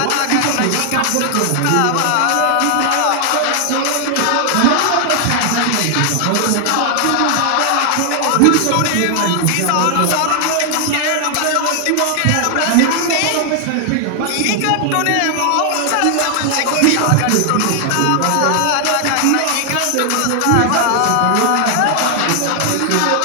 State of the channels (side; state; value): both; different; correlation 0.00